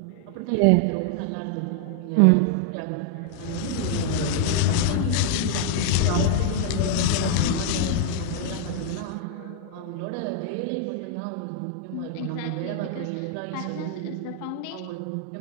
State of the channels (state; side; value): different; both; correlation 0.00